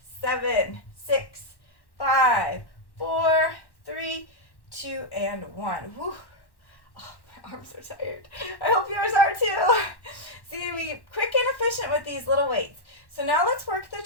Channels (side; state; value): right; late; 1.1 ms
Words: 7, 6, 5, 4, 3, 2, and 1. Whew. Oh, my arms are tired. I hope yours are too. See, we quick and efficient with these little weights. So now let's work the